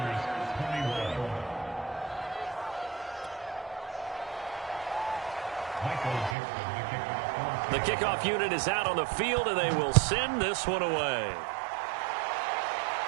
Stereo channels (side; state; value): left; drops out; at 6.4 s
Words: 21. Michael Gibson, the kickoff. The kickoff unit is out on the field, and they will send this one away.